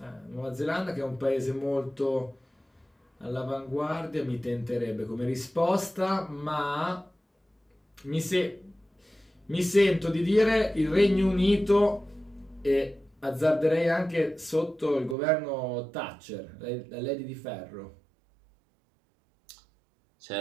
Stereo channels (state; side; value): drops out; left; at 15.2 s